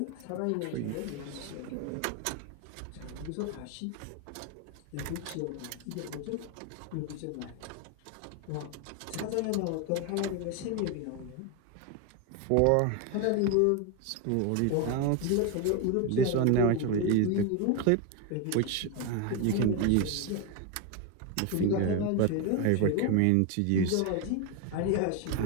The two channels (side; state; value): both; different; correlation 0.02